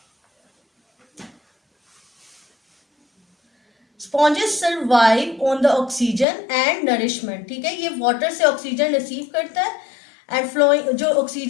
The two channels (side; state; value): right; drops out; at 6.2 s